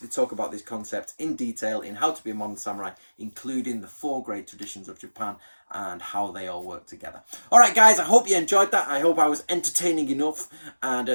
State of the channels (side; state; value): both; inverted; correlation -1.00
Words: talk about this concept in detail in How to Be a Modern Samurai, including the 4 great traditions of Japan and how they all work together. All right, guys, I hope you enjoyed that. I hope I was entertaining enough. And